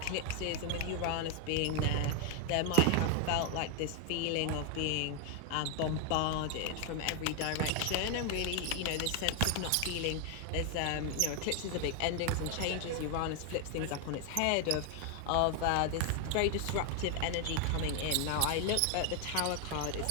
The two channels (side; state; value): both; different; correlation 0.00